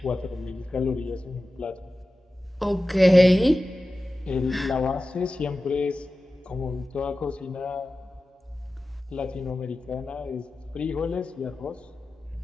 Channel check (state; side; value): normal; both; correlation 0.95